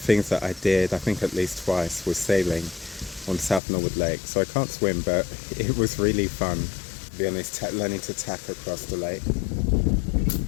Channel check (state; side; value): drops out; right; at 3.6 s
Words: that I did, I think at least twice, was sailing on South Norwood Lake. So I can't swim, but it was really fun, to be honest, learning to tack across the lake.